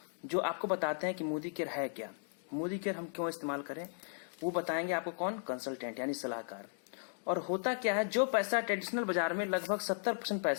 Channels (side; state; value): right; silent; digital silence